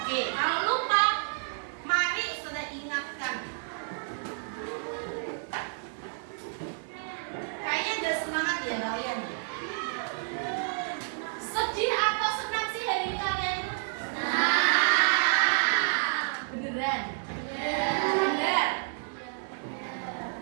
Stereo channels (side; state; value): left; silent; 58 dB below the other